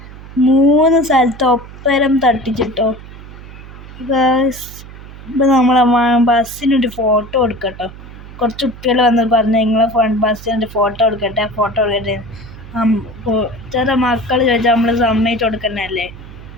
3 സ്ഥലത്ത് ഒപ്പരം തട്ടിച്ചിട്ടോ ഗൈസ്. ഇപ്പം നമ്മളെ ബസ്സിനൊരു ഫോട്ടോ എടുക്കട്ടോ. കുറച്ച് കുട്ടികൾ വന്ന് പറഞ്ഞു നിങ്ങളെ ബസ്സിനൊരു ഫോട്ടോ എടുക്കട്ടെ ചെറിയ മക്കൾ ചോദിച്ചാൽ നമ്മൾ സമ്മതിച്ച് കൊടുക്കണല്ലേ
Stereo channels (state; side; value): noise; right; hum, 16 dB below the sound